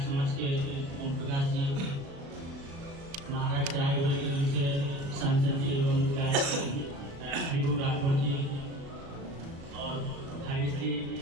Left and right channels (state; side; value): late; left; 36 ms